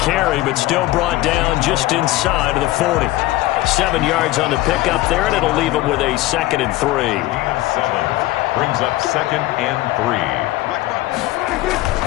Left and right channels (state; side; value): quieter; right; 17.3 dB